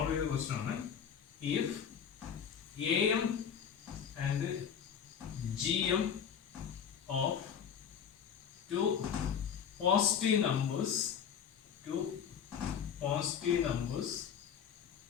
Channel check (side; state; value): right; quieter; 7.8 dB